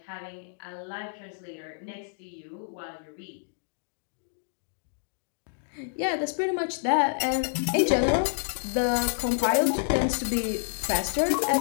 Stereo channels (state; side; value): silent; right; digital silence